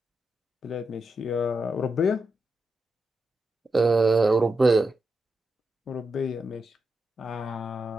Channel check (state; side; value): normal; both; correlation 0.87